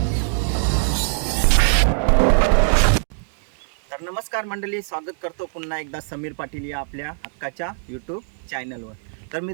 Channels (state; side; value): silent; left; digital silence